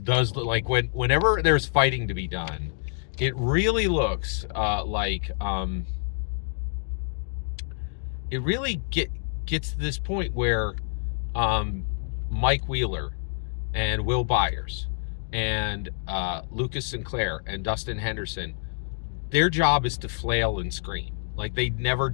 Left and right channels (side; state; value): right; silent; 60 dB below the other